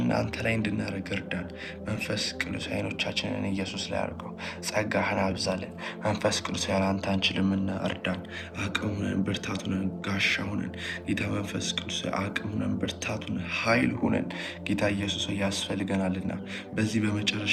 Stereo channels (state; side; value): identical; both; correlation 1.00